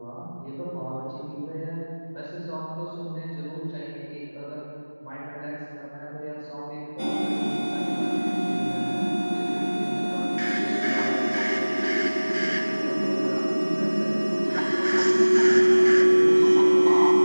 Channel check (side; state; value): both; inverted; correlation -1.00